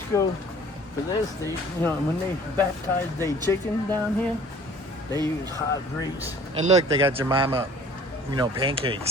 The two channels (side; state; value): both; normal; correlation 0.50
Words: for this. They, you know, when they baptize their chicken down here, they use hot grease. And look, they got Jemima, you know,